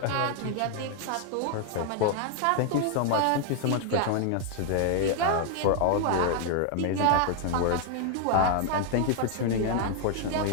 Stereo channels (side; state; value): both; different; correlation 0.00